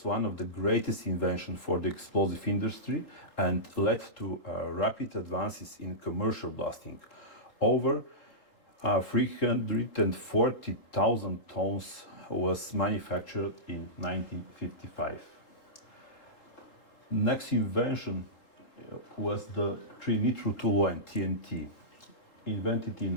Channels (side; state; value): right; late; 3.8 ms